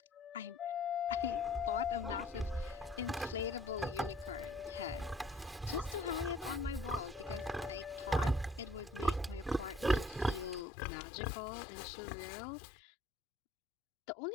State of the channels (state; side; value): drops out; right; at 10.7 s